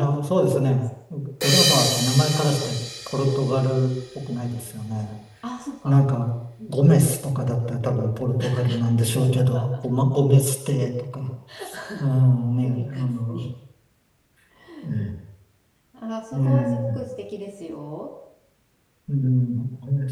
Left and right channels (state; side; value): identical; both; correlation 1.00